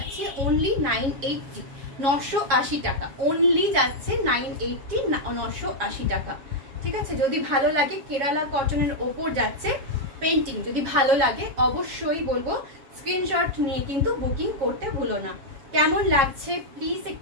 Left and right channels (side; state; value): left; late; 7.4 ms